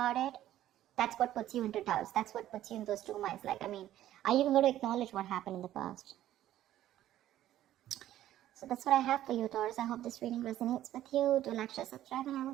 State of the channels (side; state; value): left; quieter; 13.0 dB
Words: it, that's what puts you into doubts. That's what puts you in those two minds. Are you even going to acknowledge what happened in the past? So that's what I have for you, Taurus. I hope this reading resonates with you. Do like, share, subscribe, and I